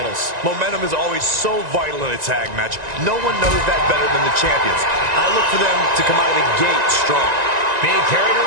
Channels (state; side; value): late; left; 1.9 ms